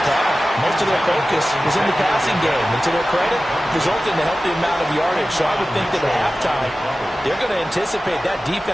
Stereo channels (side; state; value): both; normal; correlation 0.95